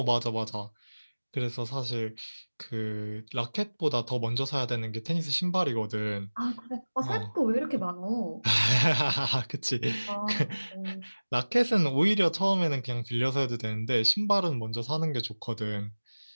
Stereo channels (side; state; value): both; inverted; correlation -1.00